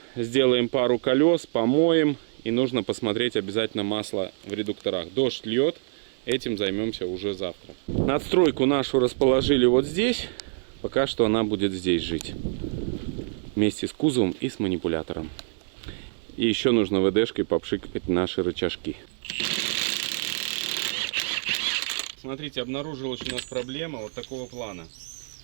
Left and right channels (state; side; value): silent; left; digital silence